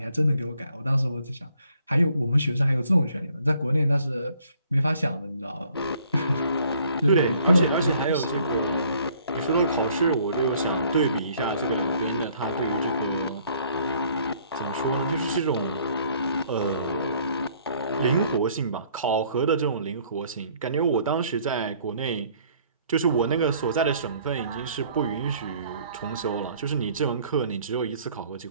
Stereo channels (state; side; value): inverted; both; correlation -0.61